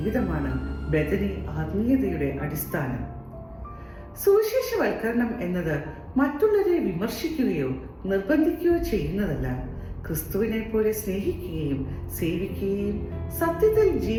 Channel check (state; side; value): identical; both; correlation 1.00